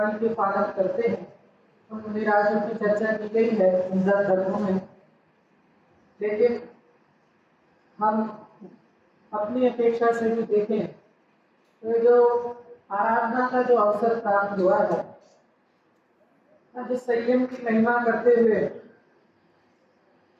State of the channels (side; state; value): both; identical; correlation 1.00